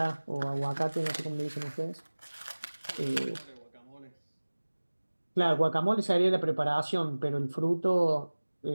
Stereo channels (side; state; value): both; inverted; correlation -1.00